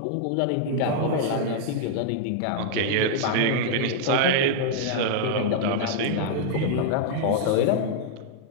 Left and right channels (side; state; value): both; different; correlation -0.01